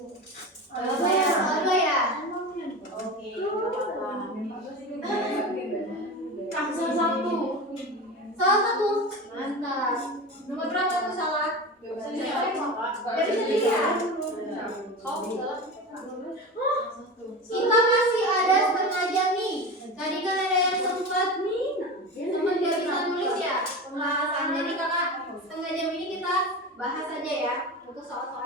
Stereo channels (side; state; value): both; normal; correlation 0.27